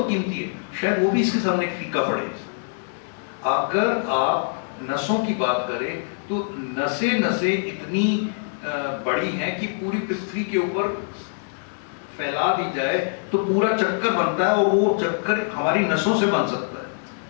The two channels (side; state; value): right; silent; 62 dB below the other